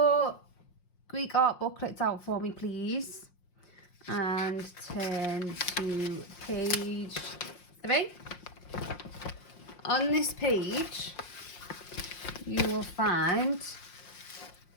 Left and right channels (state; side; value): late; right; 5.6 ms